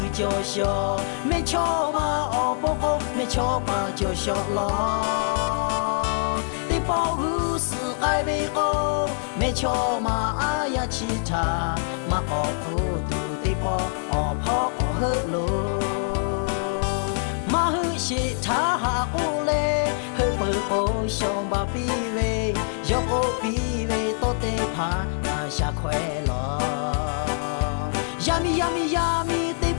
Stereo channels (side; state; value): right; silent; 62 dB below the other